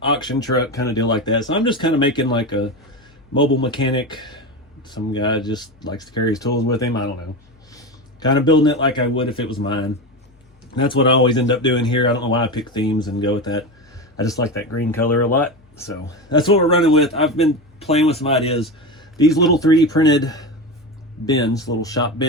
Auction truck kind of deal like that. So I'm just kind of making like a mobile mechanic. Some guy just likes to carry his tools with him. I don't know. Kind of building it like I would if it was mine. And that's what I always end up doing here. I don't know why I pick themes and go with that. I just like that green color a lot. So that's what we're running with. I've been playing with some ideas. These little 3D printed bins, little shop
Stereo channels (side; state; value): both; normal; correlation 0.21